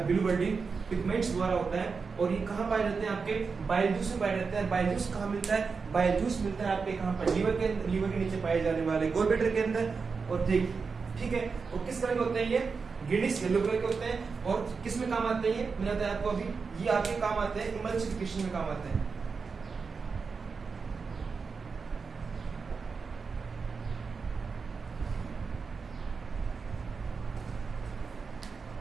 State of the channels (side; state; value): left; quieter; 5.0 dB